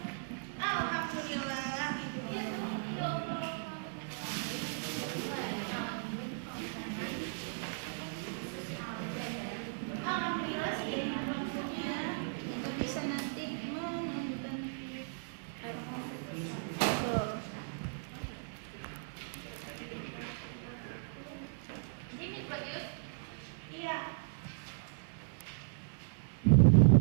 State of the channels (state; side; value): silent; left; 53 dB below the other